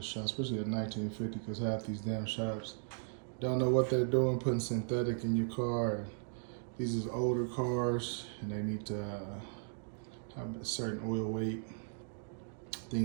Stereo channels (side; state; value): left; silent; digital silence